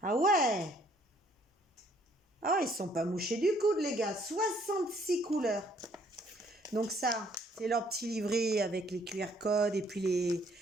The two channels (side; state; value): both; normal; correlation 0.64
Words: Ah ouais. Ah ouais, ils ne sont pas mouchés du coude, les gars. 66 couleurs. Donc, ça, c'est leur petit livret avec les QR codes. Et puis, les...